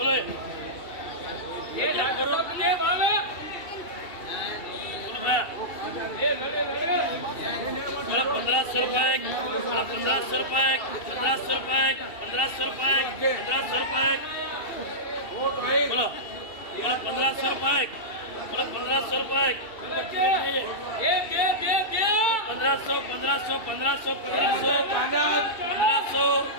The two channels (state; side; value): late; right; 2.7 ms